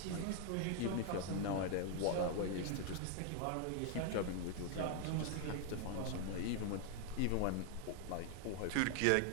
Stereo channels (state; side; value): different; both; correlation 0.00